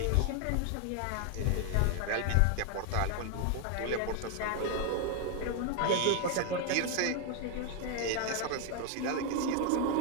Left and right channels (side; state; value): both; different; correlation 0.01